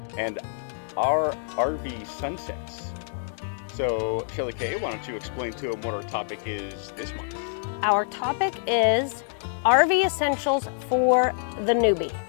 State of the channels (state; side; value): silent; right; digital silence